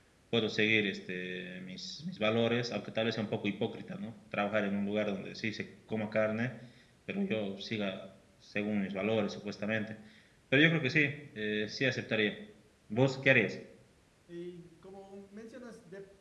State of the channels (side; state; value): both; identical; correlation 1.00